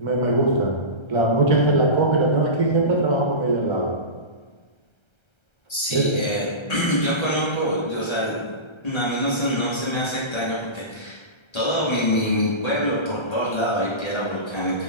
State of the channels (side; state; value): right; late; 1.3 ms